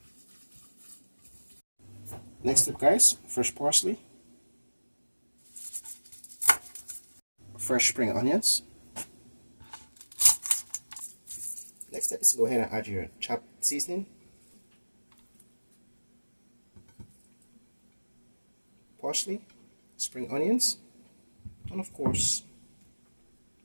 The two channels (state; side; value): inverted; both; correlation -1.00